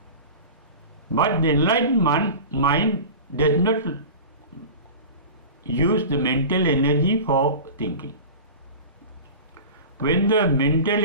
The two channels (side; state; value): both; inverted; correlation -0.34